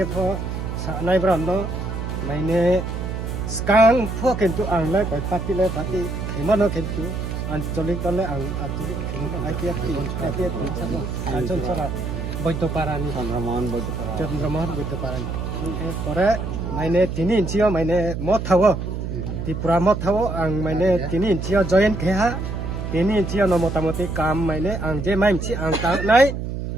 pho sa nai brando maine skang pho kentu ang la koi pati khimano kentu ancholik tole ang ancholik khimano apiat sabo anchon sara boito parani Chandramohan boito parani pore maine tini inchio maine mothawo Tripura mothawo ang maine tini inchio join kheha ini cia no motamoti kam maine ang je maim ci ang tang nai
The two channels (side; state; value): right; noise; hum, 4 dB below the sound